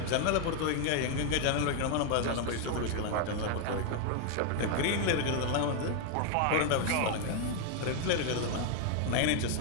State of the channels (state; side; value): different; both; correlation 0.01